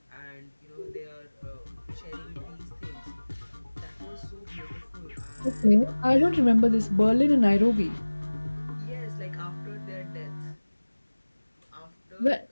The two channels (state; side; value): inverted; both; correlation -1.00